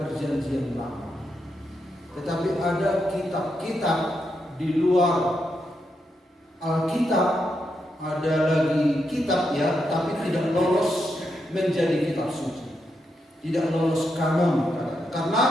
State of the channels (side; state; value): both; normal; correlation 0.83